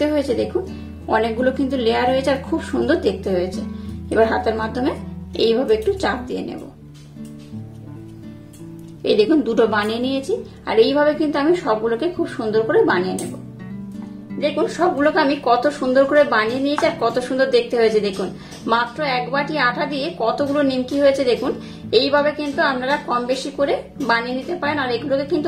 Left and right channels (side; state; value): both; identical; correlation 1.00